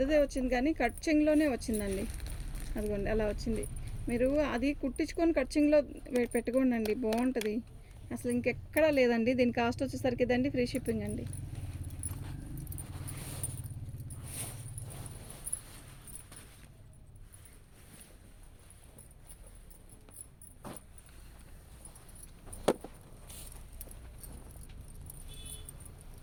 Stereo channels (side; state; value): both; identical; correlation 1.00